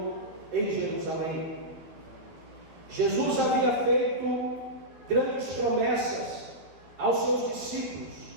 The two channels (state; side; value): late; left; 12 ms